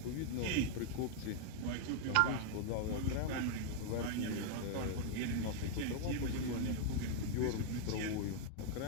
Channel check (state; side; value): different; both; correlation 0.00